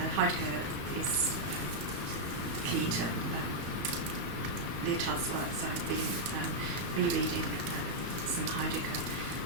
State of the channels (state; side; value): late; left; 34 ms